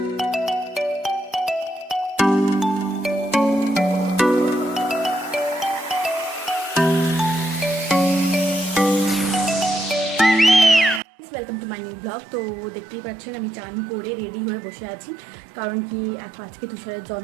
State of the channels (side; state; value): left; drops out; at 11.0 s